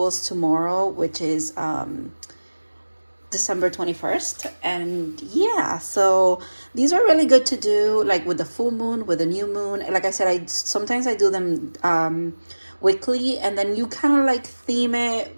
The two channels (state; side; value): inverted; both; correlation -1.00